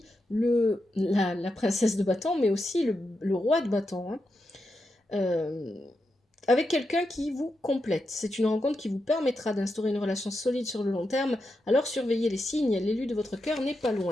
la princesse de bâton, mais aussi le roi de bâton. Hein. Avec quelqu'un qui vous complète. C'est une rencontre qui vous permettra d'instaurer une relation solide sur le long terme. Alors surveillez les signes, l'élu de votre cœur n'est pas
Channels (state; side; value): normal; both; correlation 0.86